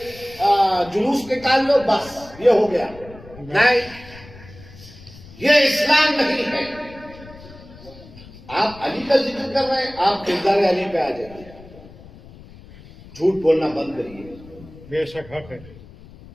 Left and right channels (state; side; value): noise; left; rumble, 20 dB below the sound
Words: جلوس نکال لو، بس یہ ہو گیا. نہیں، یہ اسلام نہیں ہے. آپ علی کا ذکر کر رہے ہیں، آپ کردار علی پہ آ جائیے. جھوٹ بولنا بند کریے. بے شک حق ہے.